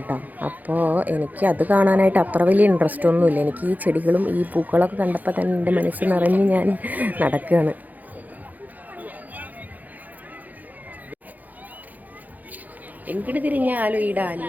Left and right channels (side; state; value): left; late; 0.081 ms